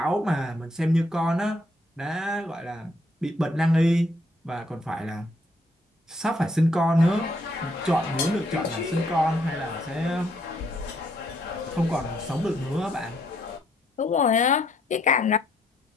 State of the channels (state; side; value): normal; both; correlation 0.70